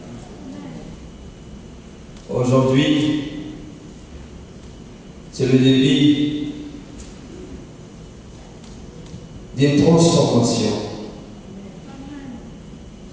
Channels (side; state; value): both; identical; correlation 1.00